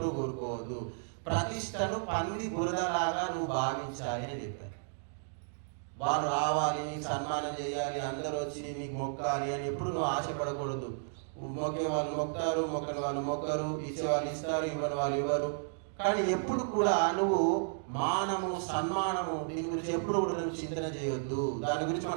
కోరుకోవద్దు, ప్రతిష్టను పంది బురదలాగా నువ్వు భావించాలి అని చెప్పారు. వాళ్ళు రావాలి, నీకు సన్మానం చేయాలి, అందరూ వచ్చి నీకు మొక్కాలి అని ఎప్పుడు నువ్వు ఆశపడకూడదు. మొక్కే వాళ్ళు మొక్తారు, మొక్కని వాళ్ళు మొక్కరు, ఇచ్చే వాళ్ళు ఇస్తారు, ఇవ్వని వాళ్ళు ఇవ్వరు. కానీ ఎప్పుడు కూడా నువ్వు మానము, సన్మానము, దీని గురించి ఎప్పుడు కూడా నువ్వు చింతన చేయొద్దు, దాని గురించి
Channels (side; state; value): left; silent; digital silence